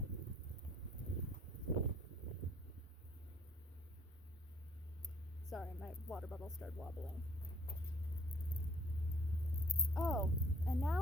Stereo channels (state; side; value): normal; both; correlation 0.60